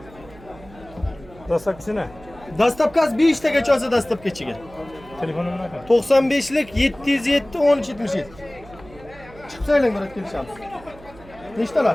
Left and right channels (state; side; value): noise; right; hum, 21 dB below the sound